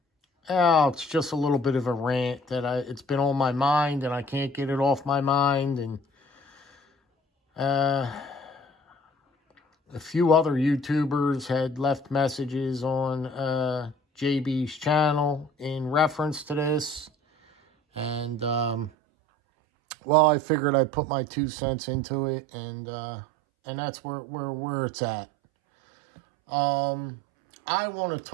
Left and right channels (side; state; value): left; drops out; at 18.9 s